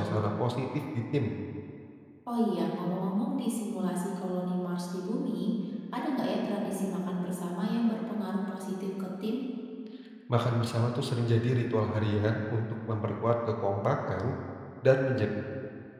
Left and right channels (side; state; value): both; identical; correlation 1.00